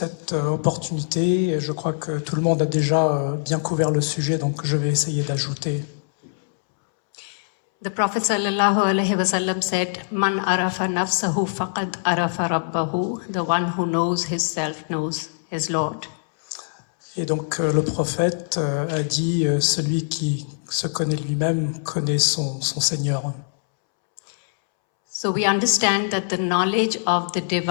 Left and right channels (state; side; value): silent; right; 63 dB below the other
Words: opportunité. Je crois que tout le monde a déjà bien couvert le sujet, donc je vais essayer d'ajouter. The Prophet sallallahu alaihi wasallam said, "Man arafa nafsahu faqad arafa rabbahu." The one who knows himself knows his Lord. Et donc le prophète a dit, celui qui se connaît lui-même connaît son Seigneur. So we understand that the knowledge of the